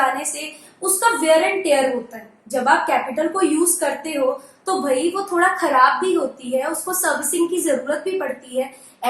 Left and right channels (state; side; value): identical; both; correlation 1.00